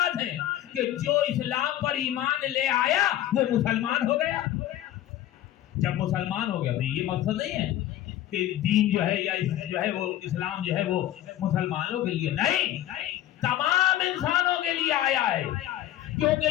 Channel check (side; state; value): right; quieter; 13.0 dB